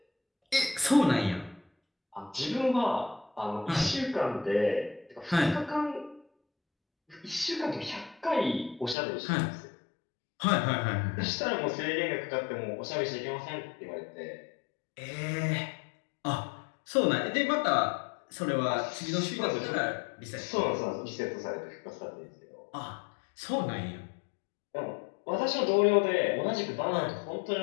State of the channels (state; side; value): drops out; right; at 9.0 s